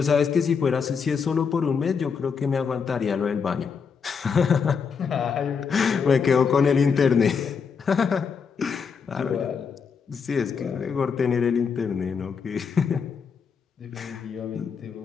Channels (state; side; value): quieter; right; 6.0 dB